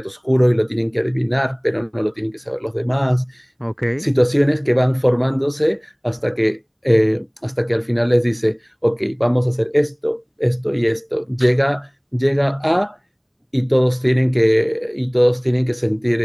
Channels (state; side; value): identical; both; correlation 1.00